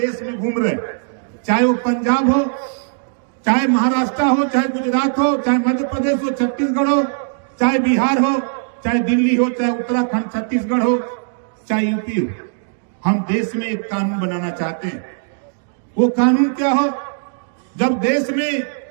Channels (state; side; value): silent; left; digital silence